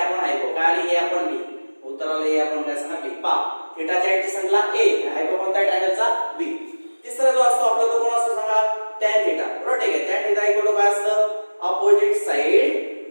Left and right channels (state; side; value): inverted; both; correlation -1.00